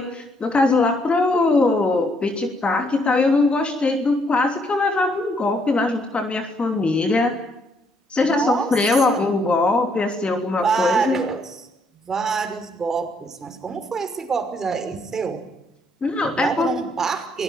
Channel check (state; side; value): normal; both; correlation 0.71